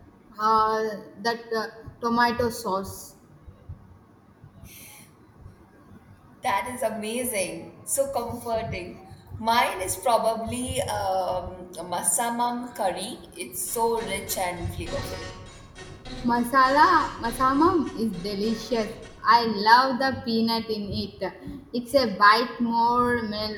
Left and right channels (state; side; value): identical; both; correlation 1.00